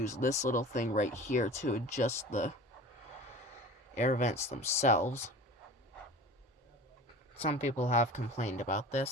this little thing right here to adjust the air vents themselves. Some people have complained about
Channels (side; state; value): both; normal; correlation 0.39